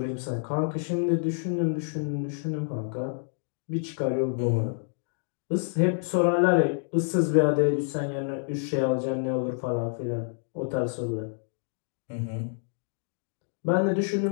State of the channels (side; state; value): right; silent; digital silence